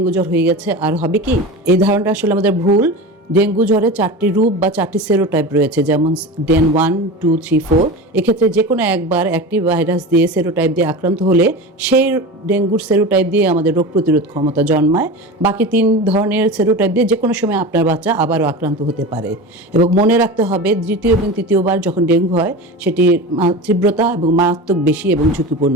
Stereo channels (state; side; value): normal; both; correlation 0.28